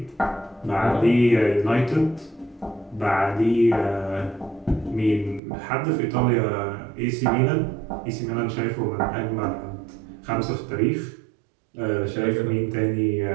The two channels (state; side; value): drops out; left; at 5.4 s